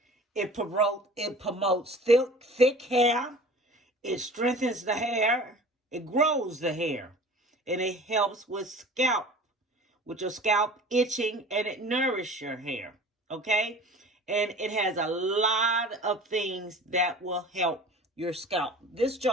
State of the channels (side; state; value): both; normal; correlation 0.42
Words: It promotes thick hair. It strengthens the hair. It grows the hair. And it helps with your scalp itching, and it nourishes your hair. Okay? And it has a lot of things that will help your scalp. This